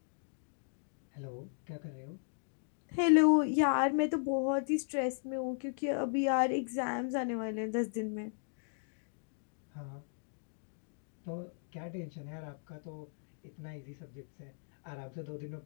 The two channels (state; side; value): silent; right; digital silence